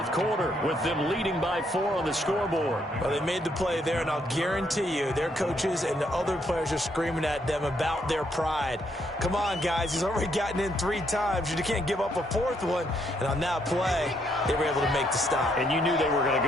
quarter, with them leading by 4 on the scoreboard. Well, they made the play there, and I'll guarantee you their coaches and the other players are screaming at them about their pride. Come on, guys. He's already gotten in 3 times. You can't give up a 4th one. And on that play, they were able to make the stop. And you knew they were going to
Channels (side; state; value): both; normal; correlation 0.73